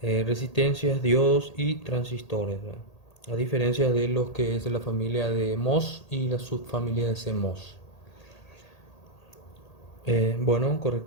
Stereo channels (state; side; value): late; right; 1.8 ms